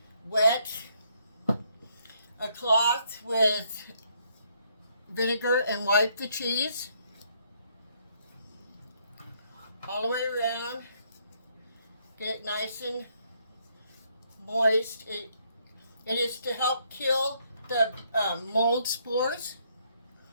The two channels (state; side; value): inverted; both; correlation -0.71